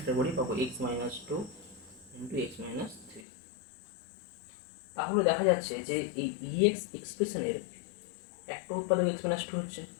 করি পাবো x minus 2 into x minus 3। তাহলে দেখা যাচ্ছে যে এই ইএক্স এক্সপ্রেশনের একটা উৎপাদক এক্স মাইনাস 2 হচ্ছে।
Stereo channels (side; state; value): right; drops out; at 3.2 s